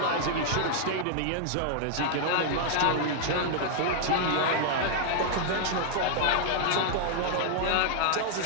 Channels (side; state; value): both; different; correlation 0.00